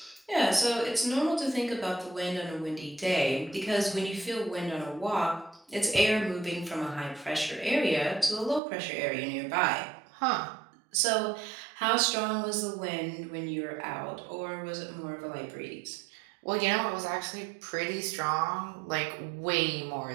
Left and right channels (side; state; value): left; drops out; at 8.6 s